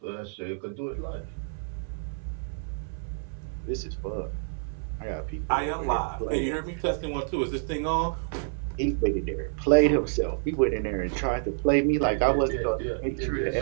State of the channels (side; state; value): left; silent; 59 dB below the other